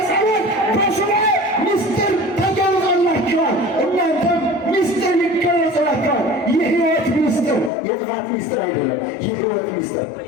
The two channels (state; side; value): drops out; right; at 7.7 s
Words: በሱባዔ ምስጢር ተገልጾላቸዋል። እናንተም ምስጢር ይገለጽላቸዋል። የሕይወት ምስጢር፣ የጥፋት ምስጢር አይደለም። የሕይወት ምስጢር